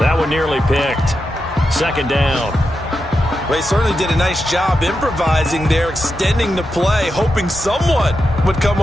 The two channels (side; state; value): both; normal; correlation 0.88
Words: one nearly picked. 2nd down. Well, he certainly did a nice job improvising there, extending the play, hoping someone would come